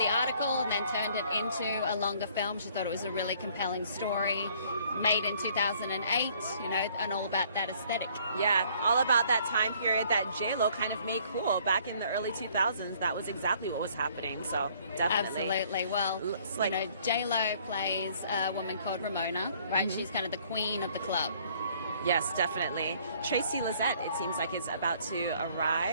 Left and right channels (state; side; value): inverted; both; correlation -0.60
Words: article and then turned it into a longer film. She thought it was a really compelling story, made in 2008, and all about that aesthetic. Yeah, all about that time period that J-Lo kind of made cool back in the early 2000s. That was exactly what was happening, so definitely. Absolutely. Well, Looks like- J-Lo plays a woman called Ramona, right? Mm-hmm. She's kind of the queen of the club. Yes, definitely. Tracy Lizette, it seems like, is about to